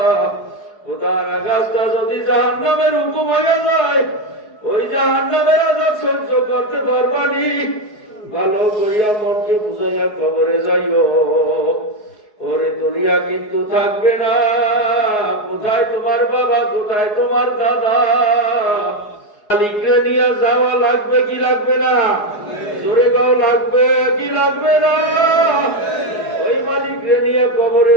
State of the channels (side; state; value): right; late; 4.7 ms